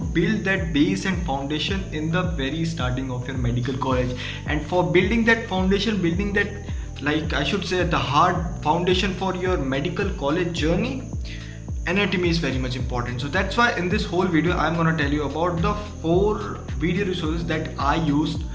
that base and foundation in the very starting of your medical college. And for building that foundation, building that, like I should say, the hard foundation for your medical college journey, anatomy is very much important. So that's why in this whole video I'm going to tell you about the 4 video resources that I used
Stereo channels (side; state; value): both; identical; correlation 1.00